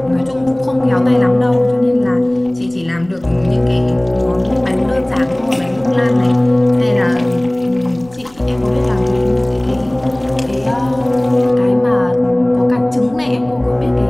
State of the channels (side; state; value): left; noise; rumble, 27 dB below the sound